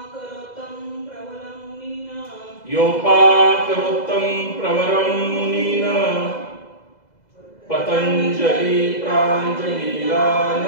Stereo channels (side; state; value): right; late; 2.0 ms